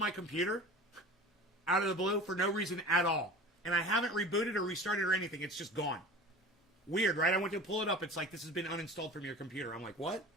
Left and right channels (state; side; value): normal; both; correlation 0.37